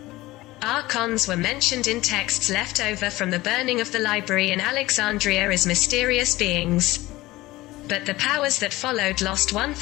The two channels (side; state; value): right; quieter; 18.5 dB